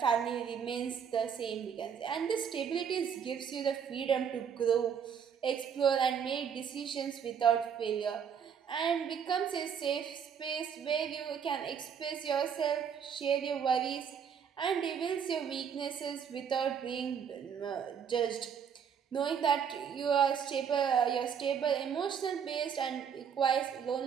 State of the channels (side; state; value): left; quieter; 7.5 dB